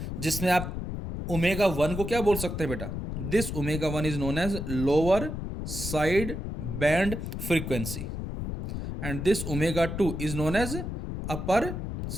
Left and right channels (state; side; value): noise; left; rumble, 5 dB below the sound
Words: जिसमें आप ओमेगा 1 को क्या बोल सकते हैं बेटा, this omega 1 is known as lower side band frequency and this omega 2 is known as upper